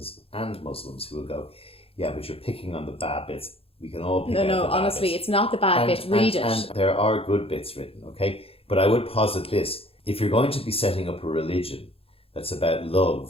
and Muslims, who will go, yeah, but you're picking on the bad bits. We can all pick out the bad honestly, bits. It's not the bad bits. Read it. And there are good bits written, okay? But I would posit this. If you're going to be setting up a religion that's about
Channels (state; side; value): late; right; 0.27 ms